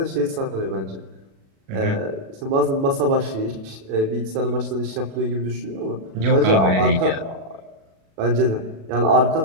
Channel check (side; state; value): left; late; 37 ms